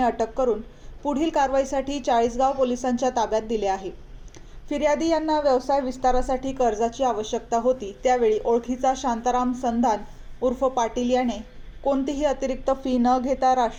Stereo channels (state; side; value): identical; both; correlation 1.00